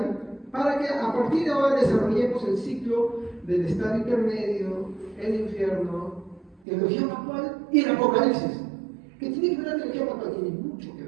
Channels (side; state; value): left; drops out; at 6.6 s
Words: para que a partir de ahora desarrollemos el ciclo del estado intermedio, el infierno, teología pascual y el apocalipsis. ¿Qué tiene que ver la teología pascual? Tiene mucho que